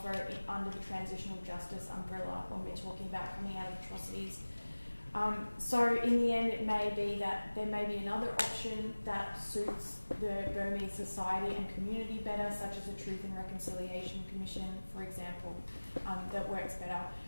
under the transitional justice umbrella when we're talking about coming out of atrocities. So in the end, it may be that there may be another option that suits the Burmese society and community better, such as a Truth and Reconciliation Commission, for example, that works better.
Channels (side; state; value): both; inverted; correlation -1.00